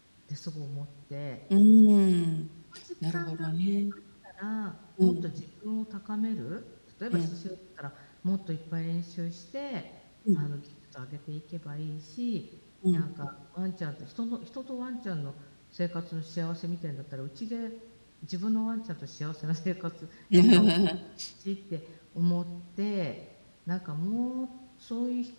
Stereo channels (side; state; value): both; inverted; correlation -1.00